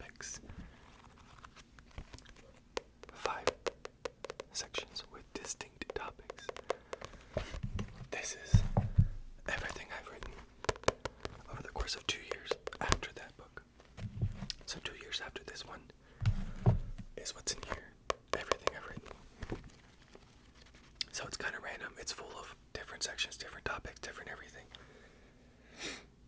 5 sections with distinct topics. This is everything I've written over the course of 2 years after that book. So 2 years after this one is what's in here. Everything I've written. So it's kind of random. It's full of different sections, different topics, different everything.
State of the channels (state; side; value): identical; both; correlation 1.00